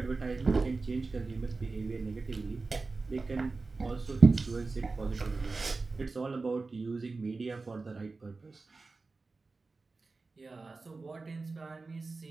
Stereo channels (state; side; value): quieter; left; 3.8 dB